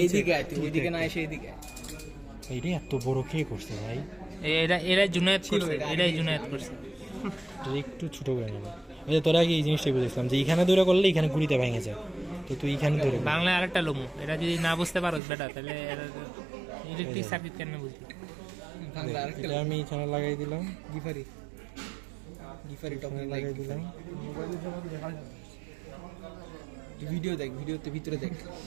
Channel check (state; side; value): drops out; left; at 15.2 s